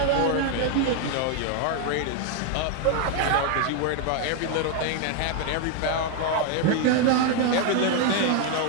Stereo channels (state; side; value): different; both; correlation 0.01